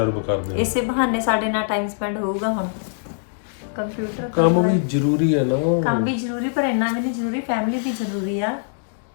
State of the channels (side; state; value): right; silent; digital silence